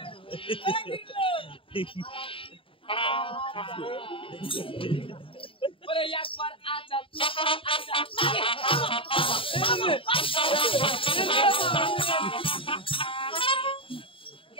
বলে একবার আচ্ছা তুই আচ্ছা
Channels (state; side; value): late; right; 0.26 ms